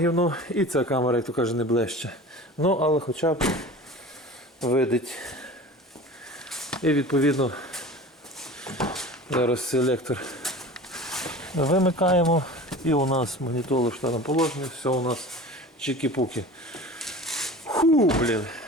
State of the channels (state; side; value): normal; both; correlation 0.38